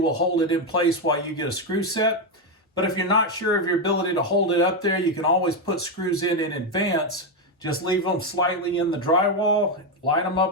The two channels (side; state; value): both; normal; correlation 0.06